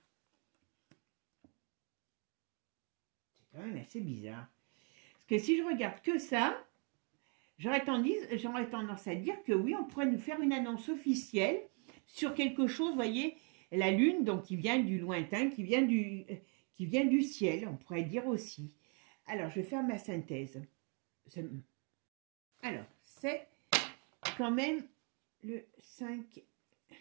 quand même assez bizarre. Parce que si je regarde que ça, j'aurais tendance à dire que oui, on pourrait nous faire une annonce officielle sur quelque chose, vous voyez, la lune, donc qui vient du lointain, qui vient du ciel, on pourrait dire aussi. Alors, je vais faire ma synthèse. Alors, c'est quand même le 5,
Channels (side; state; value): left; quieter; 38.3 dB